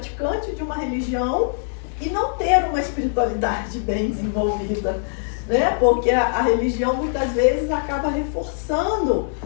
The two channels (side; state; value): right; silent; digital silence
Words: de uma religião e não ter uma espiritualidade bem desenvolvida, né? Porque a religião muitas vezes acaba reforçando